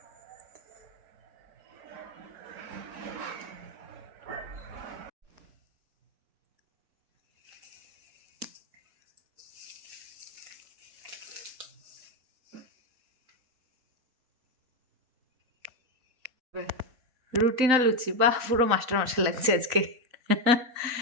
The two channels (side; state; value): left; late; 3.9 ms